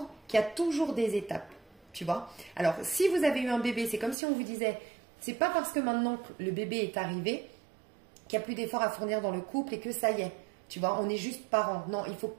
qu'il y a toujours des étapes, tu vois. Alors, si vous avez eu un bébé, c'est comme si on vous disait, c'est pas parce que maintenant que le bébé est arrivé qu'il n'y a plus d'efforts à fournir dans le couple et que ça y est, tu vois, on est juste parents. Non, il faut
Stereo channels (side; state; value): left; drops out; at 4.2 s